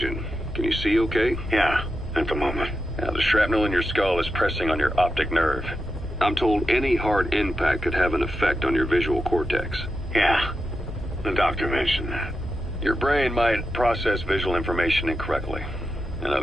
Can you see okay? Yeah, at the moment. Now, the shrapnel in your skull is pressing on your optic nerve. I'm told any hard impact could have an effect on your visual cortex. Yeah, the doctor mentioned that. Your brain might process visual information incorrectly. In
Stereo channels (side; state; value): both; normal; correlation 0.88